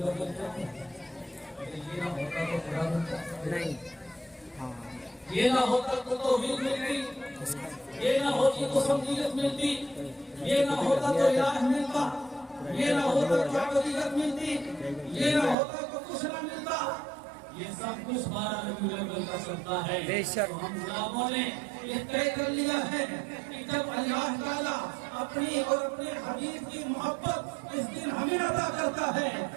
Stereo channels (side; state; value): left; drops out; at 15.6 s